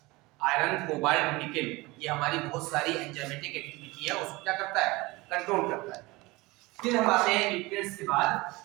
आयरन, कोबाल्ट, निकेल, ये हमारी बहुत सारी एंजाइमेटिक एक्टिविटी है, उसको क्या करता है, कंट्रोल करता है। फिर हम आते हैं न्यूट्रिएंट्स के बाद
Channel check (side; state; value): left; quieter; 22.3 dB